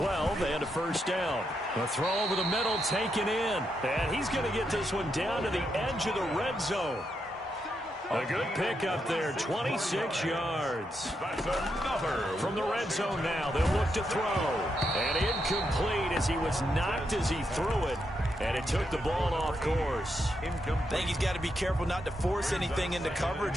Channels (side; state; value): both; normal; correlation 0.82